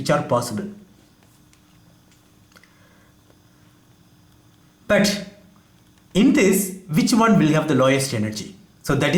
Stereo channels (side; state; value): both; identical; correlation 1.00